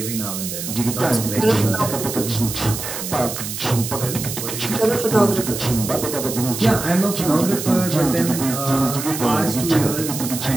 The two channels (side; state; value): right; noise; hiss, 6 dB below the sound